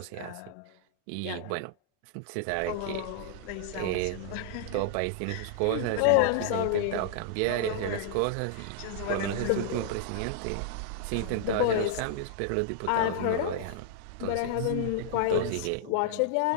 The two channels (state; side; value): different; both; correlation -0.01